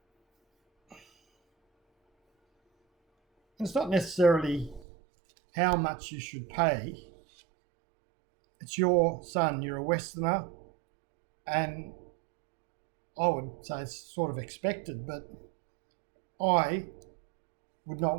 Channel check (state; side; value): drops out; left; at 4.9 s